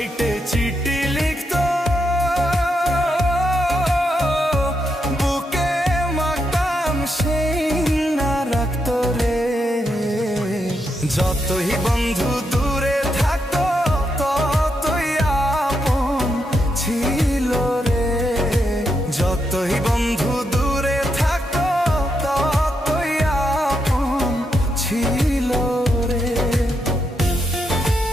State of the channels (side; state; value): both; normal; correlation 0.82